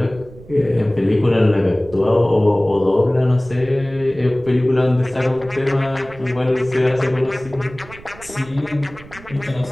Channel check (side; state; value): right; noise; rumble, 19 dB below the sound